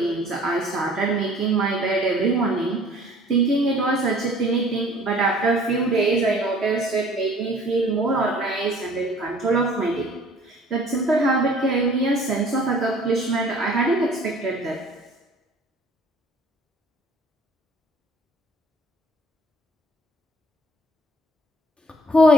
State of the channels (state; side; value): normal; both; correlation 0.52